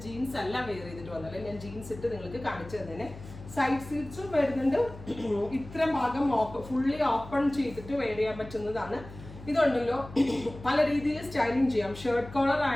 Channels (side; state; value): left; noise; hum, 15 dB below the sound